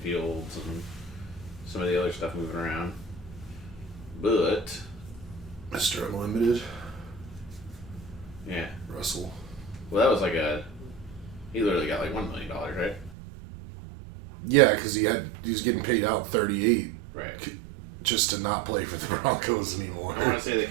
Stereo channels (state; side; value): drops out; left; at 13.2 s